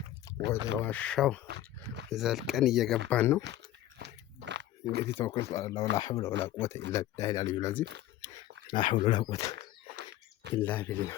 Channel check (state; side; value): quieter; right; 13.7 dB